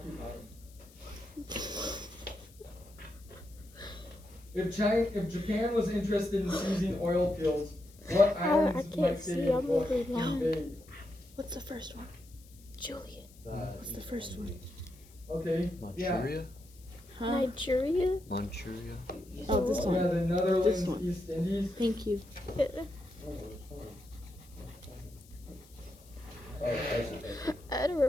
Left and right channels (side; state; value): left; noise; hiss, 25 dB below the sound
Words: If Japan was interested in seizing oil fields, what I islands can't might see, they I'm over blind. invade? What's the first one? Julian. What's the first one? Okay. Manchuria? Huh? Nigeria? Manchuria? Oh, this Yeah, one. the Netherlands, This one. East Indies. Thank you. I don't